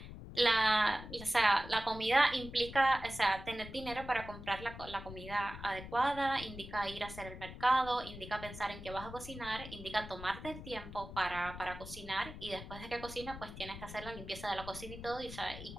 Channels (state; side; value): noise; left; rumble, 12 dB below the sound